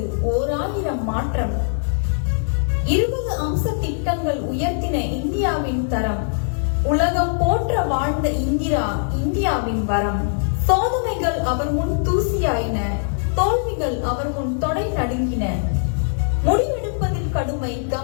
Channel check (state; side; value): silent; right; digital silence